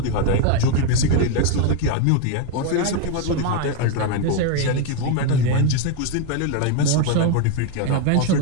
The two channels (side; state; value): both; different; correlation 0.01